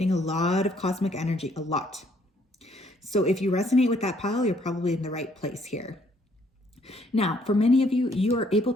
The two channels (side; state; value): both; normal; correlation 0.66